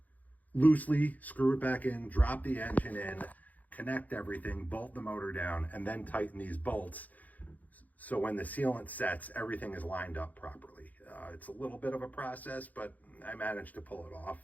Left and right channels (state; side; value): late; right; 0.079 ms